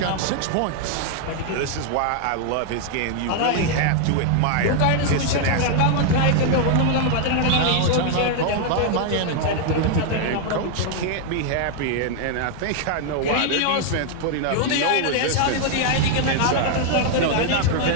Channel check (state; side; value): different; both; correlation 0.00